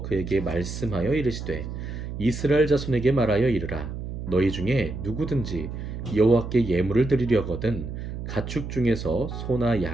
그에게 말씀하여 이르시되 이스라엘 자손에게 말하여 이르라. 너희 중에 누구든지 여호와께 예물을 드리려거든 가축 중에서 소나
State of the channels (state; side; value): noise; right; hum, 7 dB below the sound